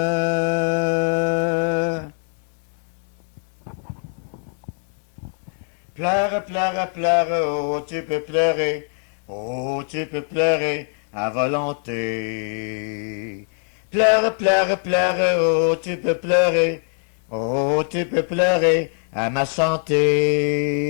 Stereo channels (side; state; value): right; silent; 55 dB below the other